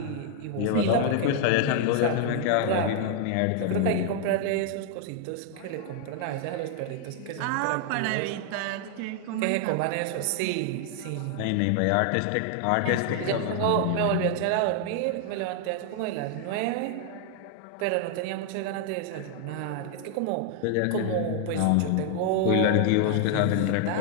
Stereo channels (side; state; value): both; different; correlation 0.00